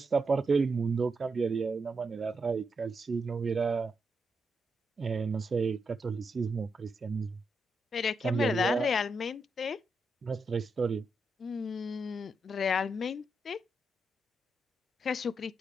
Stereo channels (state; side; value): normal; both; correlation 0.83